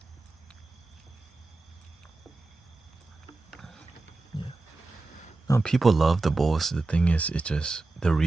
No, people love the bowls. The thing is, it's just the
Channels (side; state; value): left; quieter; 3.3 dB